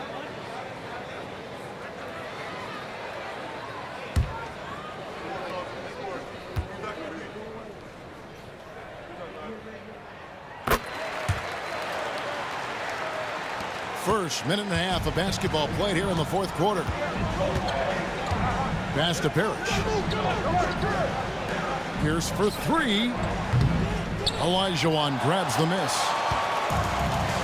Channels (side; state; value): both; identical; correlation 1.00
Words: First minute and a half of basketball played here in the fourth quarter. Pass to Parrish. Pierce for three. Olajuwon grabs the miss.